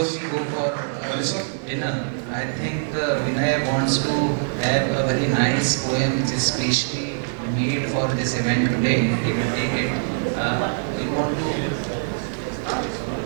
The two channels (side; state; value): left; silent; digital silence